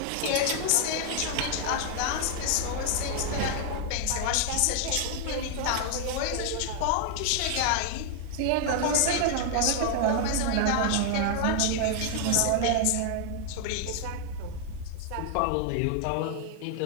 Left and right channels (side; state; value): both; different; correlation 0.00